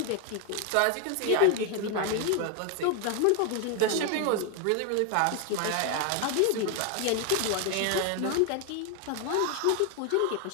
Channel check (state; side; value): different; both; correlation 0.01